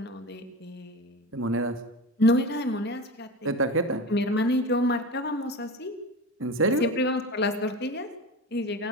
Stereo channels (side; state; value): both; normal; correlation 0.27